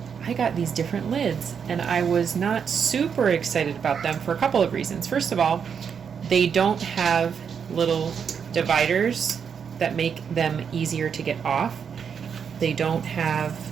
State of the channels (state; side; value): quieter; left; 7.0 dB